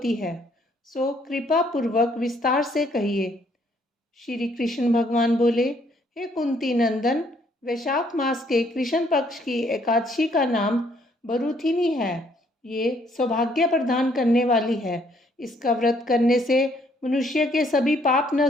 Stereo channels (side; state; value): both; normal; correlation 0.66